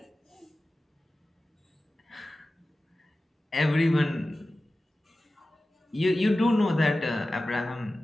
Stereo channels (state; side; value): normal; both; correlation 0.95